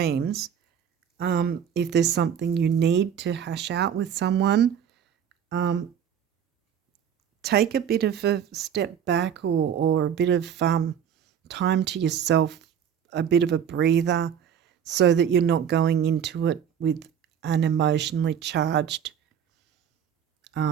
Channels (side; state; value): left; quieter; 8.5 dB